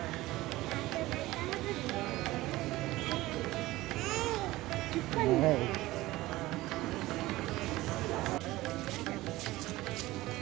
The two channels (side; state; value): left; quieter; 18.1 dB